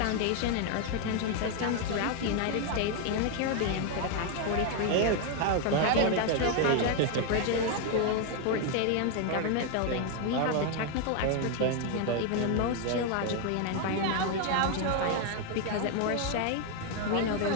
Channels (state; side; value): different; both; correlation 0.01